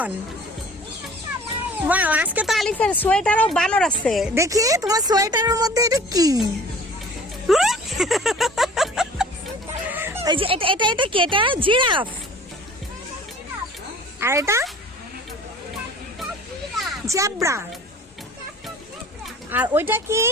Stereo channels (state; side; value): normal; both; correlation 0.47